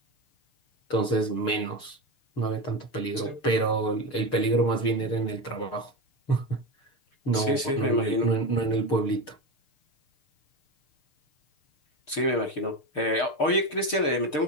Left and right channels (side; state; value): right; late; 6.6 ms